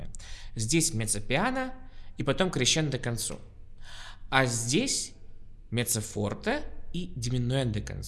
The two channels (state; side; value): identical; both; correlation 1.00